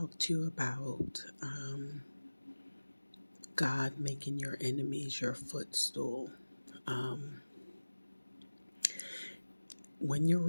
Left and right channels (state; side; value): inverted; both; correlation -1.00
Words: to you about God making your enemies your footstool. Um, when you're